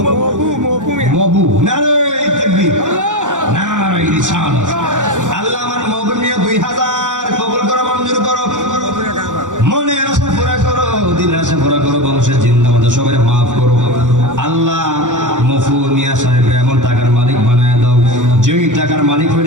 মবু। নারায়ে তাকবীর, নারায়ে রিসালাত। আল্লাহ আমার মবু মিয়া 2,000 কবুল করো, মঞ্জুর করো, মনের আশা পুরা করো, দিনের আশা পুরা করো, বংশের জিন্দা মধ্যে সবাই মাফ করো। আল্লাহ মফু মিয়া সাহেব এমন টাকার মালিক বানায় দাও।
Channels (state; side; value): late; left; 0.86 ms